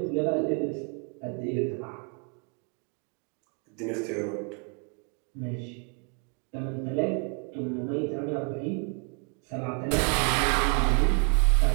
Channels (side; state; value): left; quieter; 37.6 dB